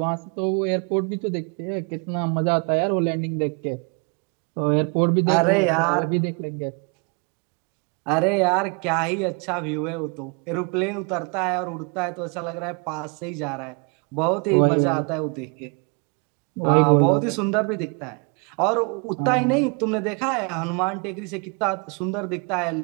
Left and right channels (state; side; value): quieter; left; 34.9 dB